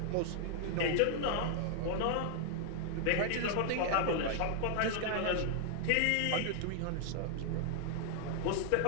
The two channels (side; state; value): both; different; correlation -0.01